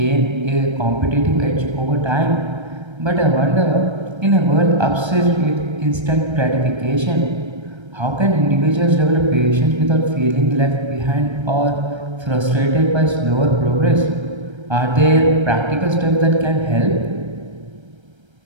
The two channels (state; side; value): late; left; 1.3 ms